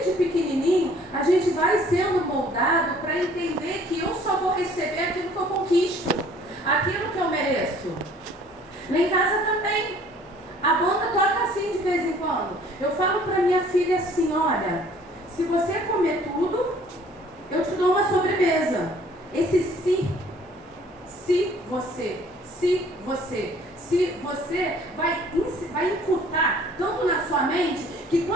pequenininho, a gente vai sendo moldado para entender que eu só vou receber aquilo que eu conquisto, aquilo que eu mereço. Lá em casa também, a banda toca assim de vez em quando. Eu falo para minha filha assim, olha, se você comer tudo, eu te dou uma sobremesa. Esse se você vai incutar tanto na sua mente que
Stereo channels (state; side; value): normal; both; correlation 0.55